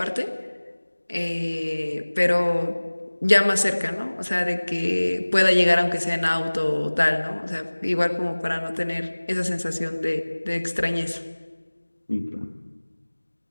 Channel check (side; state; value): both; inverted; correlation -1.00